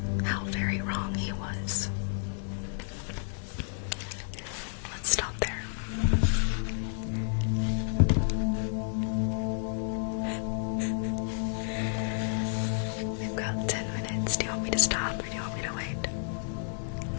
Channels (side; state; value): right; silent; digital silence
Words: How very wrong he was. Let's stop there. We've got 10 minutes. Do you want me to stop or do you want me to wait?